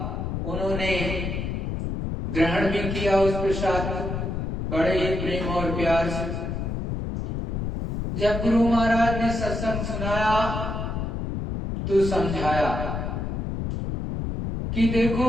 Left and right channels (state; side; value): noise; left; rumble, 3 dB below the sound